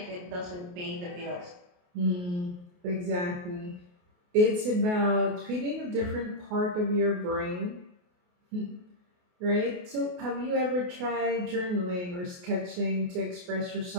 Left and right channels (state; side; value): late; left; 28 ms